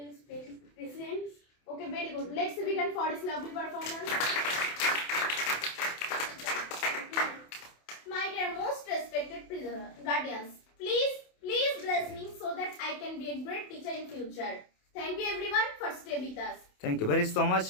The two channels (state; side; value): late; right; 27 ms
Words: presidents. Okay, very good. Let's begin for this lovely performance. My dear most respected guardians, please bless me so that I can be a great teacher in future. Thank you everyone for stay with us. Thank you very so much.